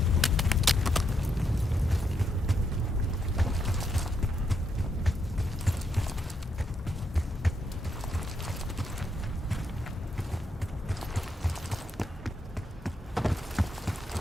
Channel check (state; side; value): normal; both; correlation 0.79